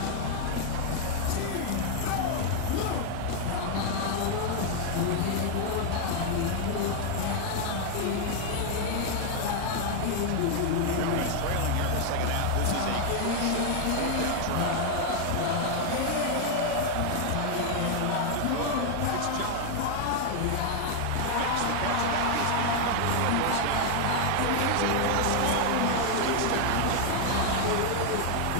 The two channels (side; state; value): both; different; correlation 0.00